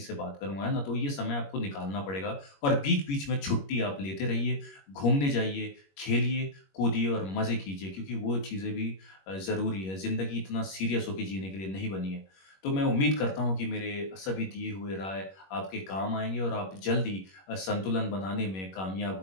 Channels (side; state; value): right; late; 21 ms